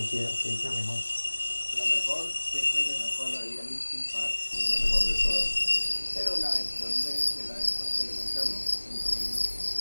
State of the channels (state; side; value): inverted; both; correlation -1.00